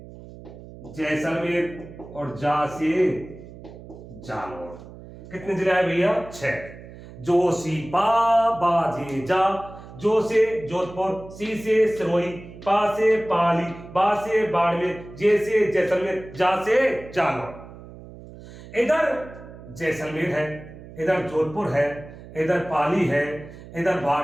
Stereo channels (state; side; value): noise; right; hum, 16 dB below the sound